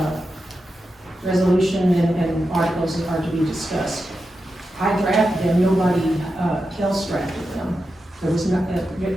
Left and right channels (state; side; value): normal; both; correlation 0.89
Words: resolution and articles are to be discussed. I drafted them, nobody else drafted them. There was not,